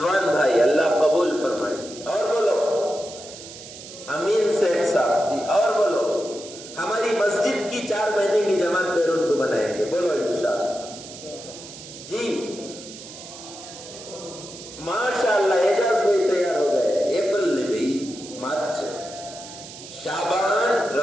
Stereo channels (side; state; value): right; noise; hiss, 14 dB below the sound